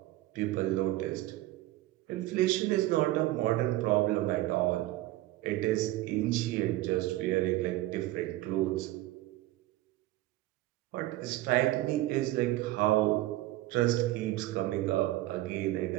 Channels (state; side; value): quieter; left; 16.8 dB